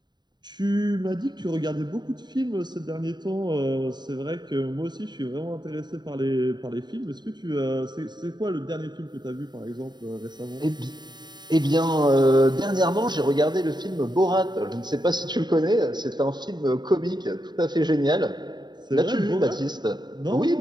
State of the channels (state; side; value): late; left; 0.21 ms